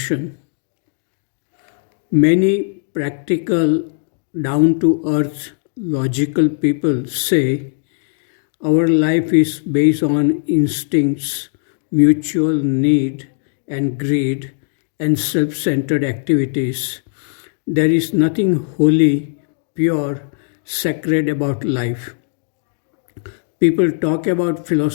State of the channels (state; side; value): silent; right; digital silence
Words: Many practical, down-to-earth, logical people say our life is based on instincts, mutual need and greed, and self-centered activities. There is nothing holy, pure, sacred about life. People talk about